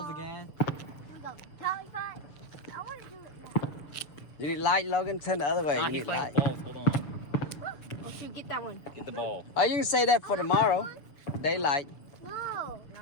again. We go. Tally fight. I want to do it now. You need light, Logan? Turn the other way. Nah, You he's need playing light. balls. Hold on. Oh shoot, get that one. Get the ball. Oh, you can say that for tomorrow. Daylight. No.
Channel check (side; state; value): right; late; 6.8 ms